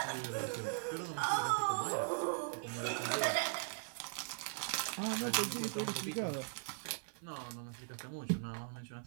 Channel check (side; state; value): left; silent; 51 dB below the other